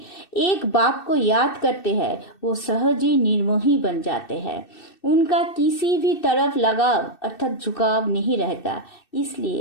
एक बाप को याद करते हैं, वो सहज ही निर्मोही बन जाते हैं। उनका किसी भी तरफ लगाव अर्थात झुकाव नहीं रहता,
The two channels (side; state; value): right; late; 2.6 ms